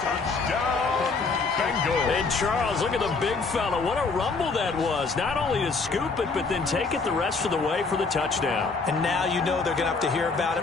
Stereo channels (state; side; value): quieter; right; 4.3 dB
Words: Touchdown, Bengals. And Charles, look at the big fella. What a rumble that was. Not only to scoop it, but then take it the rest of the way for the touchdown. And now you know they're going to have to hear about